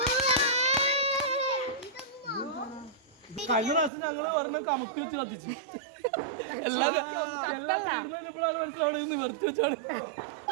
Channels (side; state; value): left; drops out; at 3.9 s